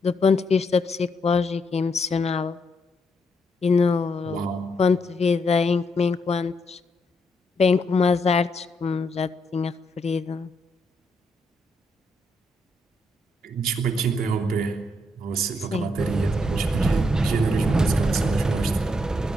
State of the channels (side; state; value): both; normal; correlation 0.77